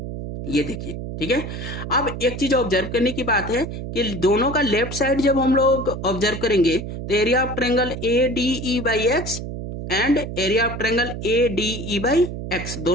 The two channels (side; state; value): right; noise; hum, 7 dB below the sound